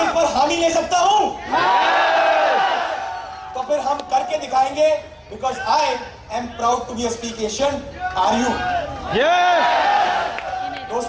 पर हामी ले सकता हूं? तो फिर हम करके दिखाएंगे, because I am proud to be a speak Asian. Are you?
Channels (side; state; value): both; identical; correlation 1.00